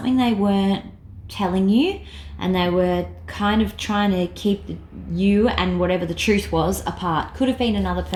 they weren't telling you, and they were kind of trying to keep you and whatever the truth was apart. Could have been another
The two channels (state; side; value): identical; both; correlation 1.00